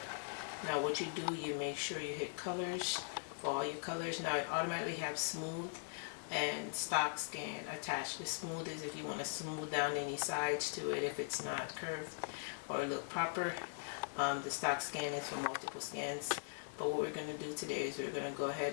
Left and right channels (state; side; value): silent; right; digital silence